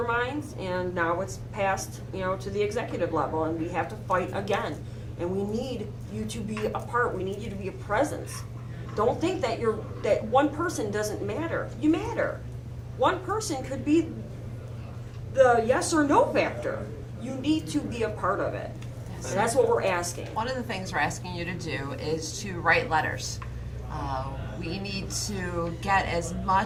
minds, and now it's passed, you know, to the executive level, and we have to fight again. And we need you to be a part. We need you to be a presence. Don't think that that one person doesn't matter. You matter. One person could be the yes or no factor. You need to be a part of it. And that's what we're asking. One of the things we're asking you to do is to write letters. We need to get as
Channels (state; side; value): identical; both; correlation 1.00